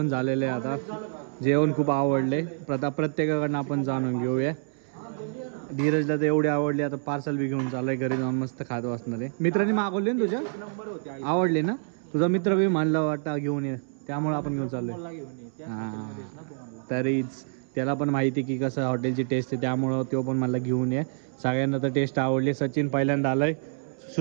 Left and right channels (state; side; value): silent; left; 60 dB below the other